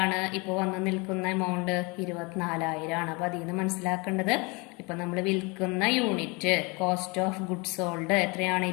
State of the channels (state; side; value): quieter; right; 28.3 dB